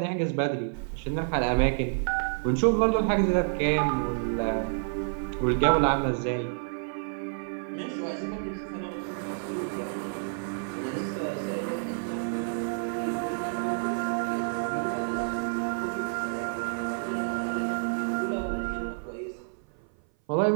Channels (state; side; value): silent; left; 56 dB below the other